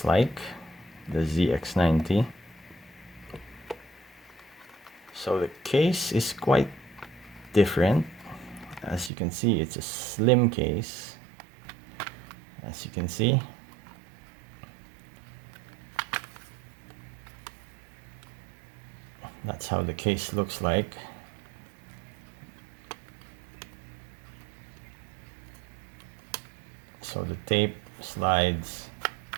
like, the ZX90. So the case is quite different. As you can see, it's a slim case. As you can see, that's how the case looks like. So the tape slides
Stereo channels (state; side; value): drops out; left; at 9.1 s